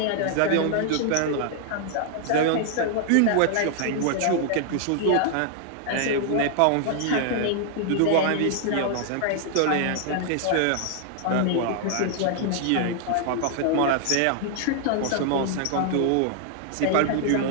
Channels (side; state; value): both; different; correlation 0.00